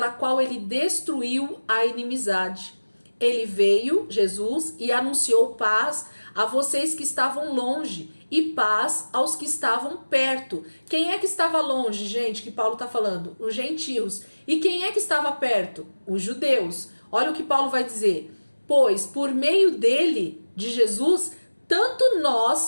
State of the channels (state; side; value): inverted; both; correlation -1.00